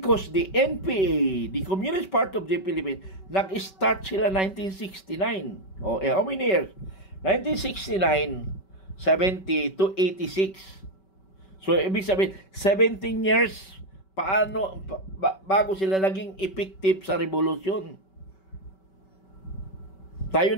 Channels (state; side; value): late; right; 5.2 ms